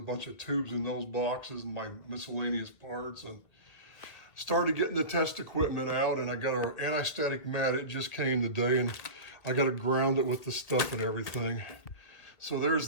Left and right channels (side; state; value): right; late; 2.2 ms